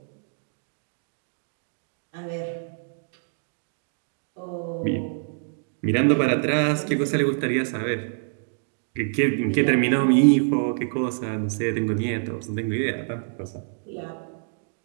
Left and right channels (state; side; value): silent; left; digital silence